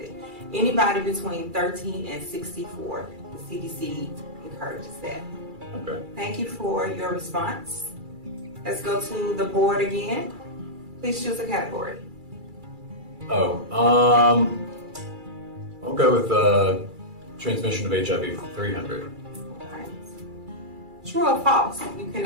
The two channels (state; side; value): late; left; 2.3 ms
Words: Anybody between 13 and 64, the CDC encourages that. Okay. Thank you for your response. Let's go to the board again. Please choose a category. I'll go with transmission of HIV for 300. Alright. True or false? You